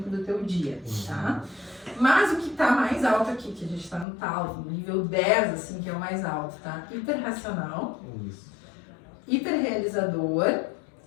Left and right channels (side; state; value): right; drops out; at 4.0 s